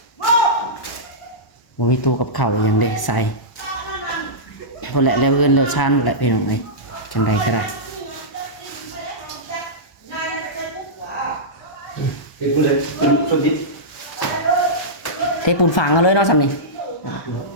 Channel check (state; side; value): late; right; 1.0 ms